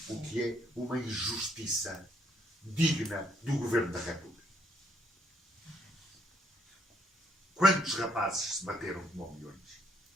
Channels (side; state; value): both; normal; correlation 0.69